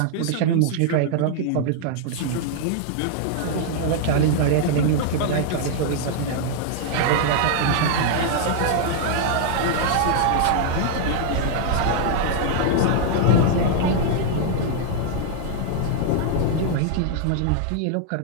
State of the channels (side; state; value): both; different; correlation -0.01